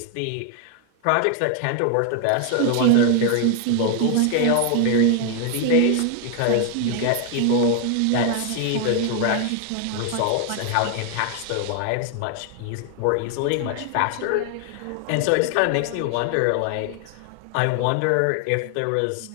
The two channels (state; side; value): different; both; correlation 0.00